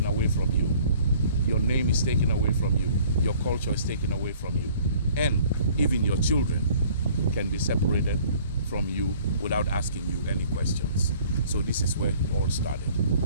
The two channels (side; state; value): both; inverted; correlation -0.54